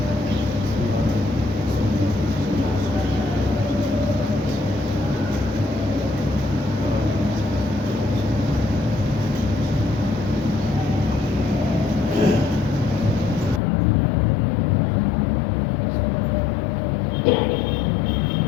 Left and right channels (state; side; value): drops out; right; at 13.6 s